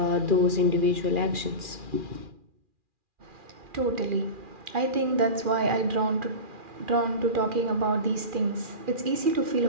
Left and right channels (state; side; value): late; left; 2.4 ms